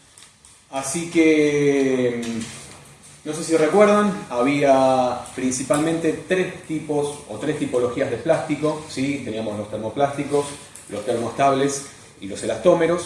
Así que, no sé si recuerdan, había principalmente tres tipos o tres tipologías de plástico, ¿sí? Teníamos los termoplásticos, los termoestables y los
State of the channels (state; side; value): identical; both; correlation 1.00